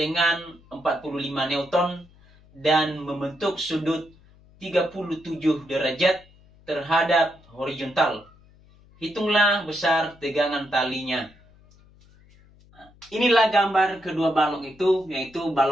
45 Newton dan membentuk sudut 37 derajat terhadap horizontal. Hitunglah besar tegangan talinya. Inilah gambar kedua balok itu, yaitu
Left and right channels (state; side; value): noise; left; hum, 27 dB below the sound